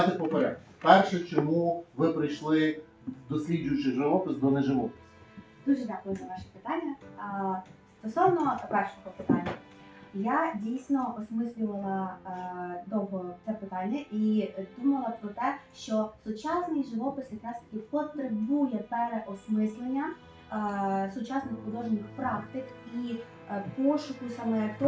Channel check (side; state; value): both; identical; correlation 1.00